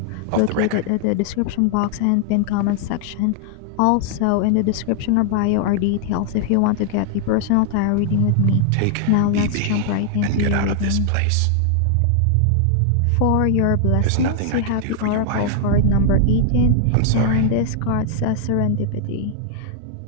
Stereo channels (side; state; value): both; different; correlation 0.00